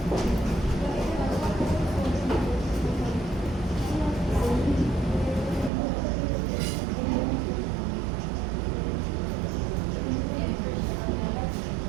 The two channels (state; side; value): drops out; left; at 5.7 s